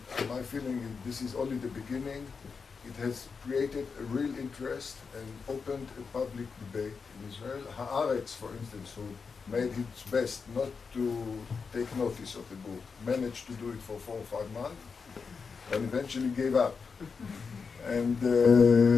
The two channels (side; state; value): right; quieter; 5.3 dB